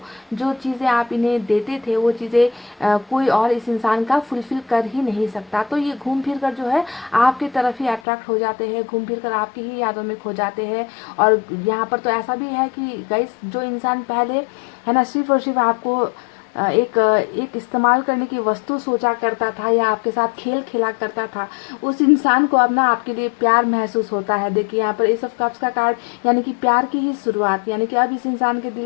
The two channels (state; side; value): drops out; right; at 8.0 s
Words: जो चीज़ें आप इन्हें देते थे, वो चीज़ें कोई और इस इंसान का फुलफिल कर ही नहीं सकता। तो ये घूम फिर कर जो है आपकी तरफ ही अट्रैक्ट हो जाते हैं, घूम फिर कर आपकी ही यादों में खो जाते हैं। और यहाँ पर तो ऐसा भी है कि गाइस, जो इंसान पहले है ना सिर्फ और सिर्फ आपको एक इस्तेमाल करने की वस्तु सोचा करता था या आपके साथ खेल खेला करता था, उस इंसान को अब ना आपके लिए प्यार महसूस होता है। देखिए यहाँ पर एस ऑफ कप्स का कार्ड, यानी कि प्यार की ही शुरुआत, यानी कि अब इस इंसान के